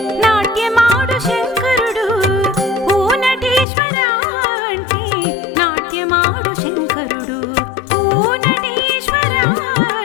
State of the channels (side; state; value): right; drops out; at 3.7 s